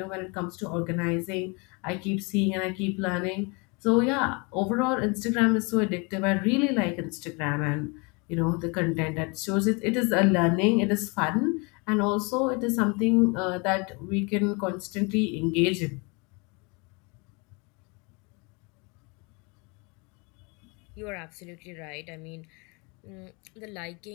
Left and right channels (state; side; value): quieter; right; 30.5 dB